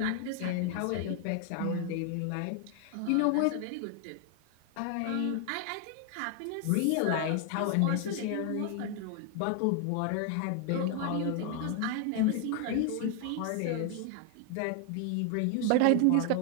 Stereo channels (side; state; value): both; different; correlation 0.00